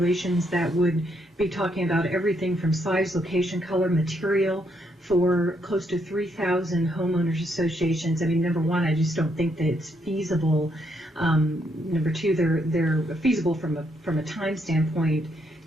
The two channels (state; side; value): normal; both; correlation 0.75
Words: that would be talking about everything from size, location, color, material for close to 3,000 homeowners associations. I mean, number one, I just don't think that it's feasible. Number two, they're feasible from a time standpoint.